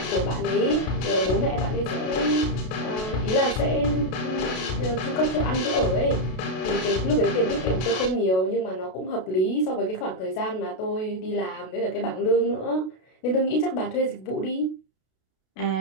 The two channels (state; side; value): late; right; 32 ms